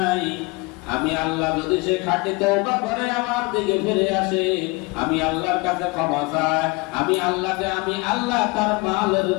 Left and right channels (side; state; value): right; quieter; 25.7 dB